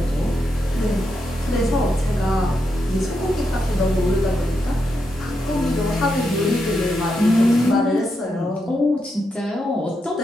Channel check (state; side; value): normal; both; correlation 0.84